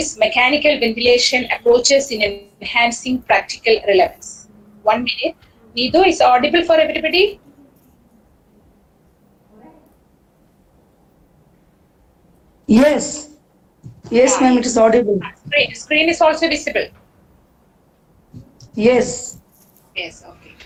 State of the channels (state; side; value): identical; both; correlation 1.00